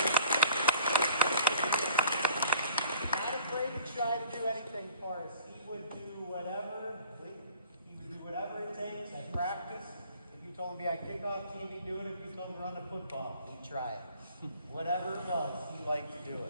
Not afraid to try to do anything for us. He would do whatever. He would do whatever it takes at practice. If you told him to be on kickoff team, he'd do it. If you told him to run the football, he'd try it. Whatever it was, he liked to do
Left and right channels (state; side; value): inverted; both; correlation -0.52